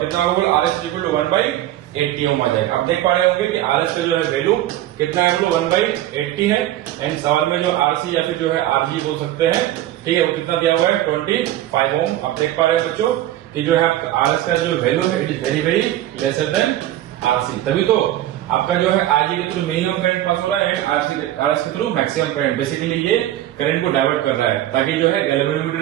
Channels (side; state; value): left; quieter; 13.6 dB